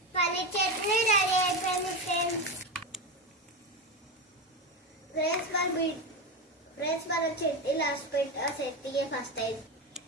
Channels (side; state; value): both; normal; correlation 0.17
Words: పల్లి చట్నీ రెడీ అయిపోయింది ఫ్రెండ్స్. మన చట్నీ లాస్ట్ పెట్టి ఆ చట్నీ ఫస్ట్ అయింది.